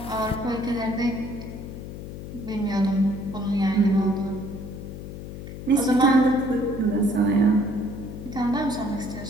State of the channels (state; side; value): noise; left; hum, 10 dB below the sound